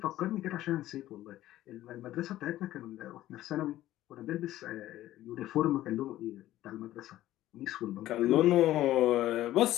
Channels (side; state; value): right; quieter; 14.4 dB